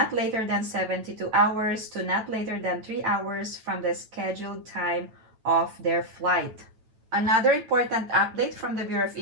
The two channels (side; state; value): left; late; 9.0 ms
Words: later than 72 hours to not later than 3 hours from the scheduled time of their flight. Another important update from the Bureau of